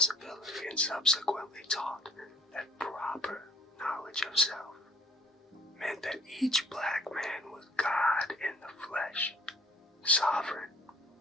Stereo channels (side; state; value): both; normal; correlation 0.57